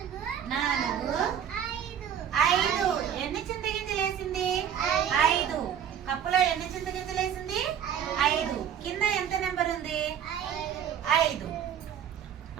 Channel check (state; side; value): quieter; left; 9.0 dB